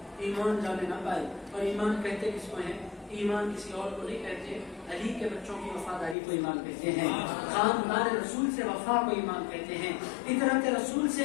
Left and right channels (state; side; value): drops out; right; at 6.2 s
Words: ایمان جانے نہ پائے. اور ایمان کہتے کس کو ہیں؟ ایمان کسی اور کو نہیں کہتے، علی کے بچوں کی وفاداری کو ایمان کہتے ہیں، خاندان رسول سے وفا کو ایمان کہتے ہیں، اطاعت رسول